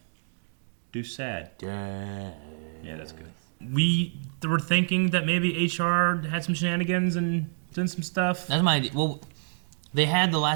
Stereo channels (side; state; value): left; silent; digital silence